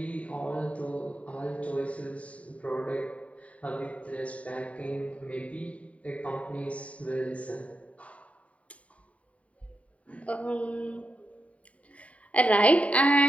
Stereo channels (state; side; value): late; right; 0.066 ms